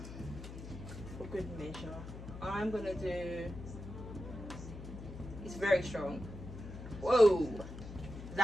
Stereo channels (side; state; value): left; noise; hum, 11 dB below the sound